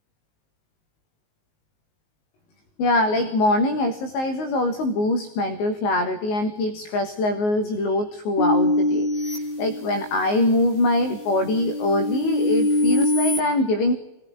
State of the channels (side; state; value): right; late; 19 ms